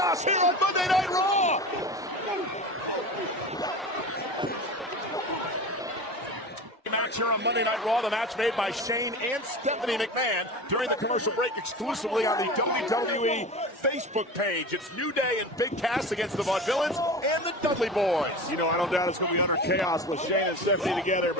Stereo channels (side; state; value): both; normal; correlation 0.31